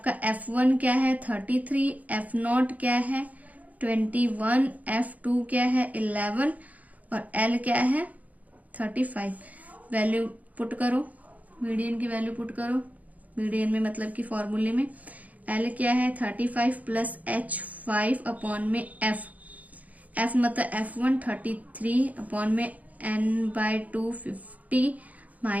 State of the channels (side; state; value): left; late; 0.075 ms